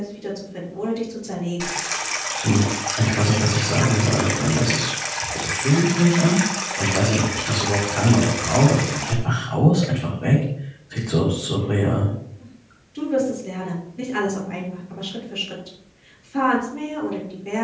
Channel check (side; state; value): both; identical; correlation 1.00